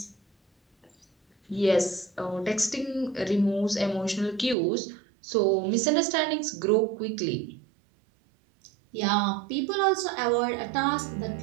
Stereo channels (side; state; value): left; drops out; at 4.5 s